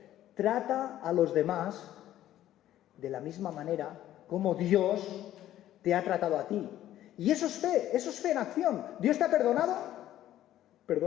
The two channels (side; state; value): right; quieter; 12.9 dB